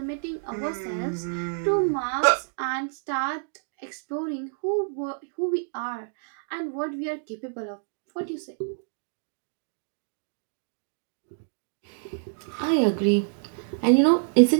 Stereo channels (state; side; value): silent; left; digital silence